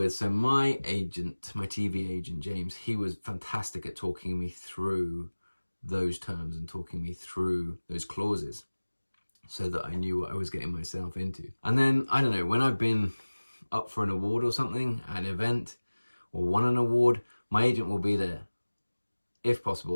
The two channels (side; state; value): both; inverted; correlation -1.00